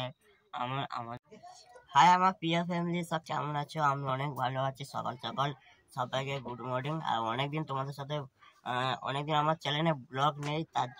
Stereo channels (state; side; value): identical; both; correlation 1.00